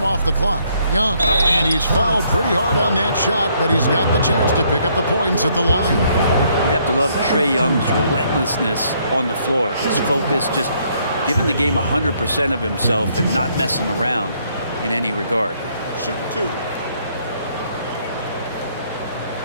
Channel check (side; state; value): both; inverted; correlation -0.69